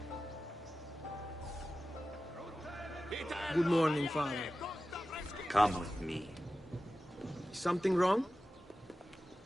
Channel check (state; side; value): normal; both; correlation 0.94